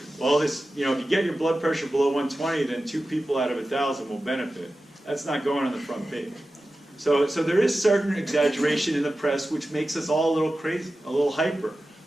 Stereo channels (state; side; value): normal; both; correlation 0.94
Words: well, this, if you get your blood pressure below 120, then 2 people out of 1,000 will benefit. That's not going on the front page. So there is certain exaggeration in the press which makes us all a little crazy, a little hyper,